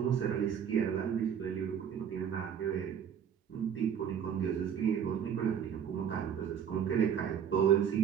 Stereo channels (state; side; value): quieter; left; 8.3 dB